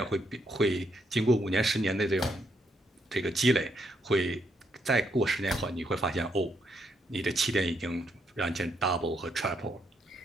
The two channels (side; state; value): both; normal; correlation 0.76